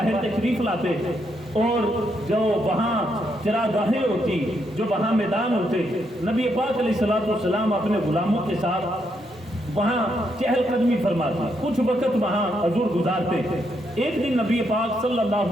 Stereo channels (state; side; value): normal; both; correlation 0.78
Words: تشریف لاتے، اور جو وہاں چراگاہیں ہوتی، جو وہاں میدان ہوتے، نبی پاک علیہ السلام اپنے غلاموں کے ساتھ وہاں چہل قدمی فرماتے، کچھ وقت وہاں حضور گزارتے۔ ایک دن نبی پاک صلی